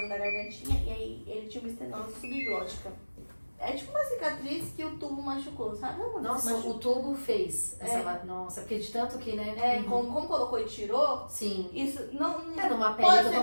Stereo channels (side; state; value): both; inverted; correlation -1.00